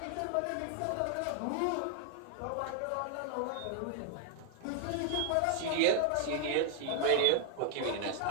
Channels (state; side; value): different; both; correlation 0.00